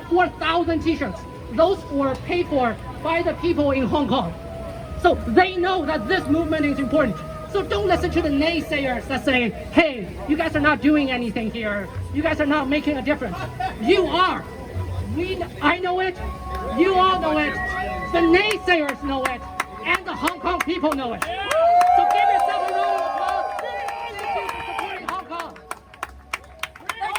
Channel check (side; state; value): both; identical; correlation 1.00